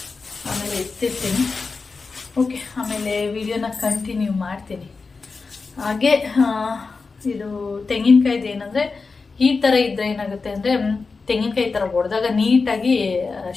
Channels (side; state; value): right; quieter; 4.4 dB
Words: ಆಮೇಲೆ ಎತ್ತಿರ್ತೀನಿ. ಓಕೆ, ಆಮೇಲೆ ವಿಡಿಯೋನ ಕಂಟಿನ್ಯೂ ಮಾಡ್ತೀನಿ. ಹಾಗೆ ಇದು ತೆಂಗಿನಕಾಯ್ದು ಏನಂದರೆ, ಈ ಥರ ಇದ್ದರೆ ಏನಾಗುತ್ತೆ ಅಂದರೆ, ತೆಂಗಿನಕಾಯಿ ಥರ ಹೊಡೆದಾಗ ನೀಟಾಗಿ